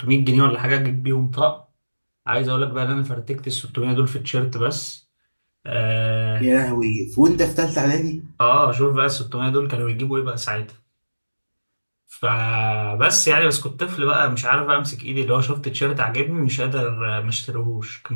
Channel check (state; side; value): inverted; both; correlation -1.00